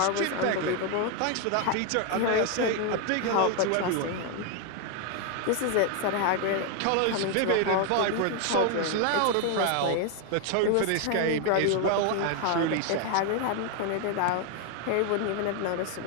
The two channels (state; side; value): different; both; correlation 0.01